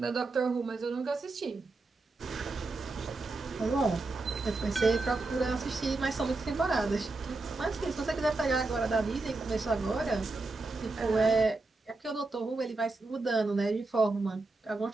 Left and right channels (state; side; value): quieter; left; 3.4 dB